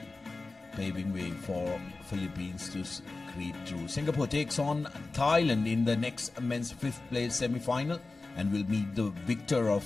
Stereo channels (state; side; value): quieter; right; 3.5 dB